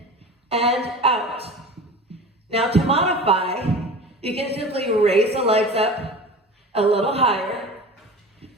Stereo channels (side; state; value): both; normal; correlation 0.35